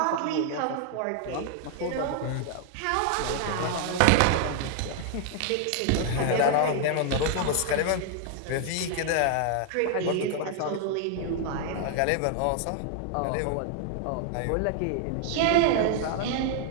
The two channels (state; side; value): different; both; correlation 0.00